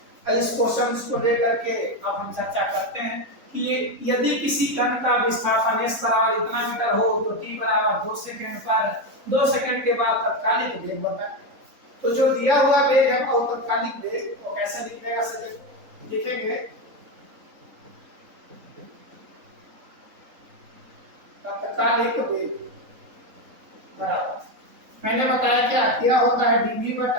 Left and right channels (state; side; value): late; left; 3.9 ms